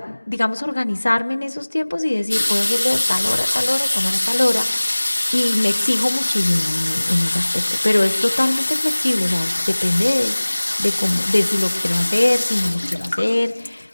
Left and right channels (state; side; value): inverted; both; correlation -1.00